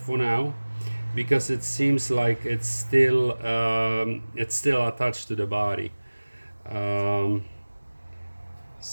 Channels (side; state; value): both; inverted; correlation -1.00